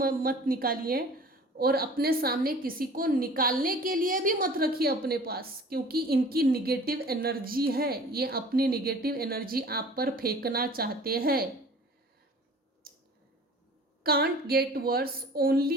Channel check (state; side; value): normal; both; correlation 0.46